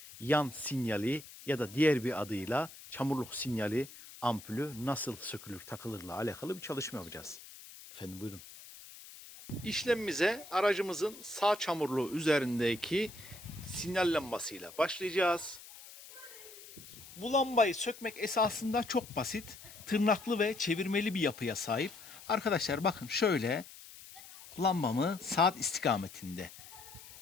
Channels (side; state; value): left; noise; hiss, 17 dB below the sound